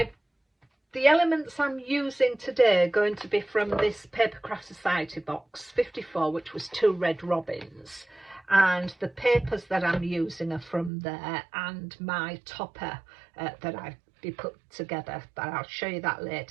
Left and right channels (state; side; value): drops out; left; at 10.9 s